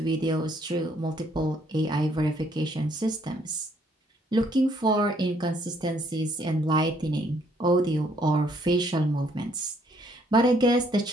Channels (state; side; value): normal; both; correlation 0.67